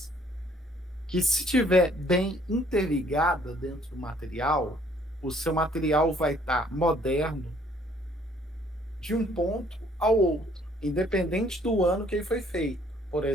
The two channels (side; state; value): both; normal; correlation 0.61